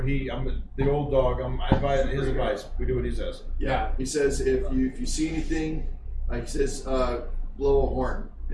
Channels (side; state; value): both; identical; correlation 1.00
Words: I'm the old dog. I advise his advice. We do what he says. Yeah. He says if you see anything, he says blow a horn,